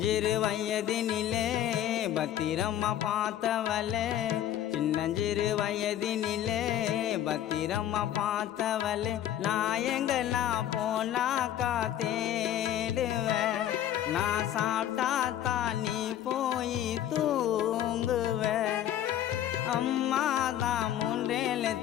வயதினிலே பத்திரம்மா பார்த்தவளே சின்னஞ்சிறு வயதினிலே பத்திரம்மா பார்த்தவளே நான் எங்கெல்லாம் போனாக்கா தேடுவேன் நான் சாப்பிட்டா தான் நீ போய் தூங்குவேன் அம்மா தான்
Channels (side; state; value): right; quieter; 11.5 dB